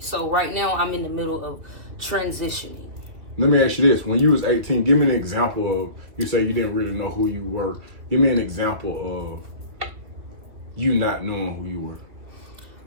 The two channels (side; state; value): left; late; 2.8 ms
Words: So right now, I'm in the middle of transitioning. Let me ask you this. When you was 18, give me an example of, you say you didn't really know who you were. Give me an example of you not knowing who you were.